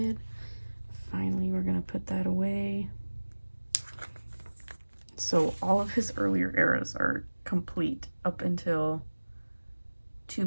Finally, we're gonna put that away. So all of his earlier eras are complete up until 2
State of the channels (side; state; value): both; inverted; correlation -1.00